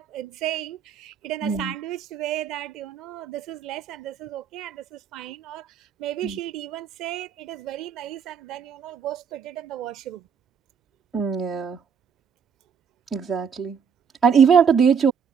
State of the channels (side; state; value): left; quieter; 6.9 dB